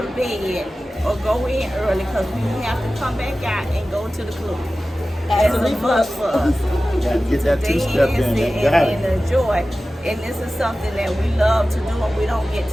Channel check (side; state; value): both; normal; correlation 0.95